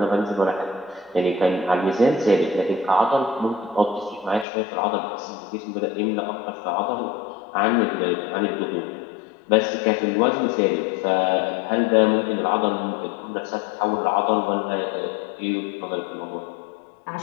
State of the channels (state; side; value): drops out; right; at 4.5 s